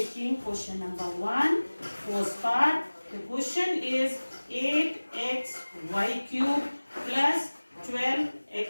question number 1, first part. The question is 8xy cube plus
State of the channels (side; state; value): both; inverted; correlation -1.00